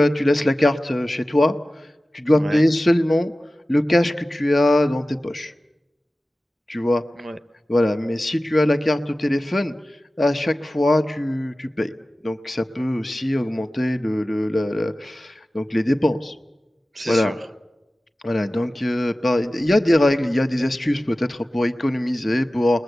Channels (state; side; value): normal; both; correlation 0.96